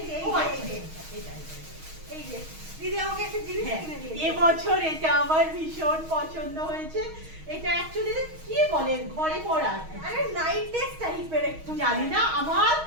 যে, ও, এই যে, এটা। এই যে দিদি আমাকে একটা জিনিস হ্যাঁ, কিনে দিয়েছে। এবছর এটা আমার ভীষণ পছন্দ হয়েছে। এটা অ্যাকচুয়ালি কি বলে, ঘরে পড়া, আরে নাইট ড্রেস টাইপের একটু, জানি না, আমার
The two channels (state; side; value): late; left; 6.3 ms